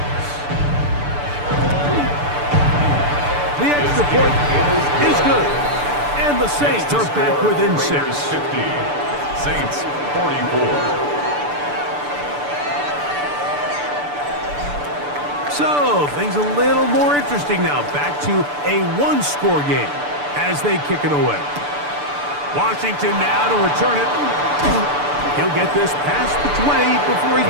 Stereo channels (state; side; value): late; left; 6.8 ms